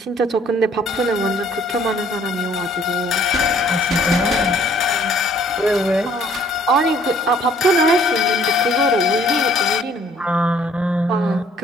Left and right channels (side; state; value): both; normal; correlation 0.59